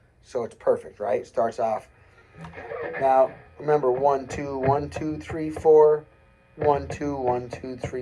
So it's perfect, right? It starts off. Now, remember, 1, 2, 1, 2, 3, 4. 1, 2, 1, 2,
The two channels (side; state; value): both; identical; correlation 1.00